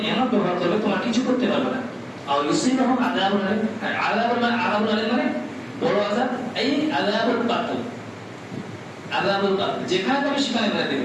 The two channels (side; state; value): both; identical; correlation 1.00